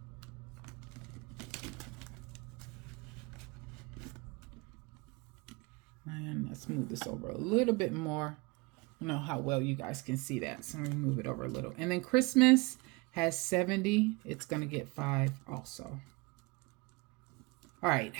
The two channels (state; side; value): quieter; left; 25.6 dB